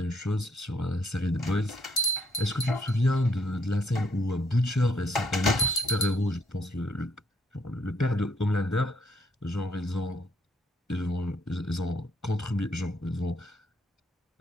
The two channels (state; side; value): normal; both; correlation 0.70